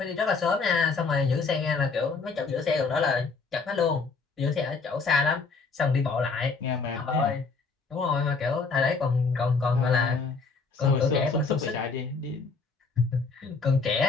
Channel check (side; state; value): right; quieter; 4.5 dB